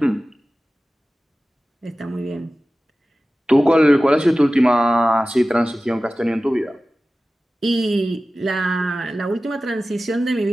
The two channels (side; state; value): both; normal; correlation 0.96